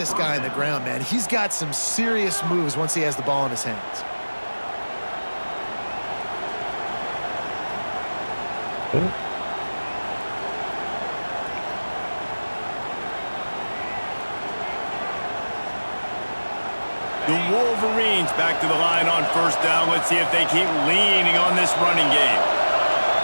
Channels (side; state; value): both; inverted; correlation -1.00